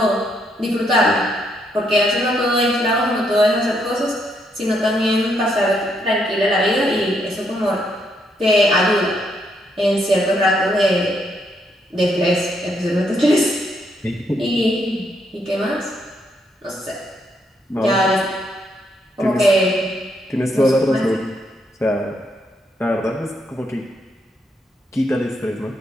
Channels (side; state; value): both; normal; correlation 0.75